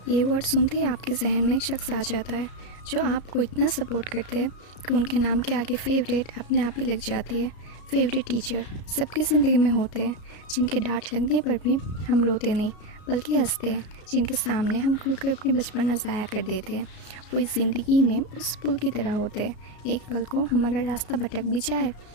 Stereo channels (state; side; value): late; right; 33 ms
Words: ये word सुनते ही आपके जहन में एक शख्स आ जाता है जो आपको इतना सपोर्ट करते हैं कि उनके नाम के आगे फेवरेट अपने आप ही लग जाती है। फेवरेट टीचर सबकी ज़िंदगी में होते हैं, जिनके डांट लगने पर भी हम रोते नहीं बल्कि हंसते हैं, जिनके सामने हम खुलकर अपनी बचपना ज़ाया कर देते हैं। वो इस ज़िंदगी में उस पुल की तरह होते हैं। एक पल को हम अगर रास्ता भटक भी जाए